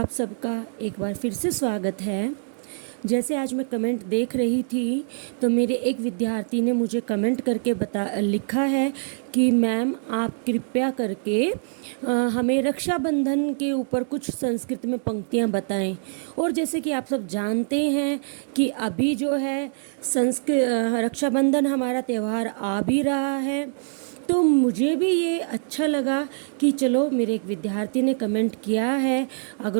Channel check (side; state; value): left; silent; digital silence